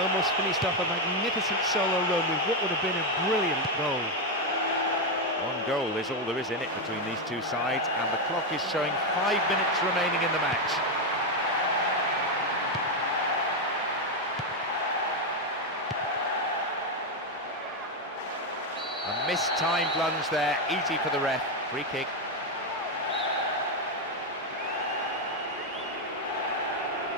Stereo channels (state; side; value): normal; both; correlation 0.06